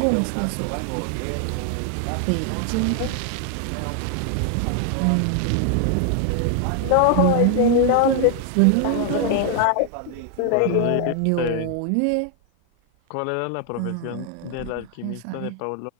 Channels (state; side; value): different; both; correlation 0.00